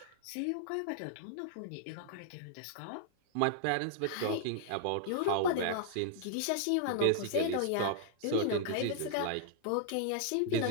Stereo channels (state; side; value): different; both; correlation -0.01